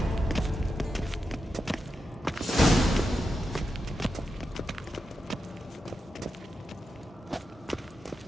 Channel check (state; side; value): normal; both; correlation 0.88